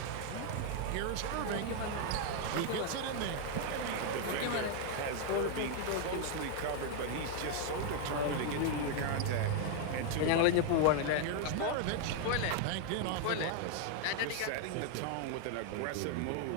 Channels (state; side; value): different; both; correlation 0.00